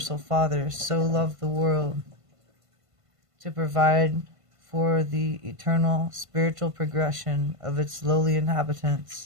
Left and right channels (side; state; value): left; late; 1.5 ms